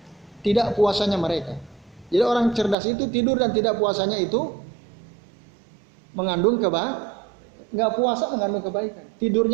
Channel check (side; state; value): left; drops out; at 2.8 s